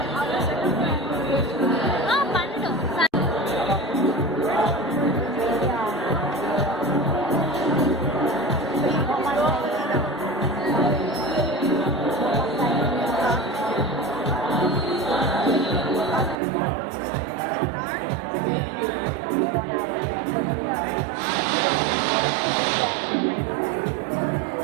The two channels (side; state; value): left; drops out; at 16.4 s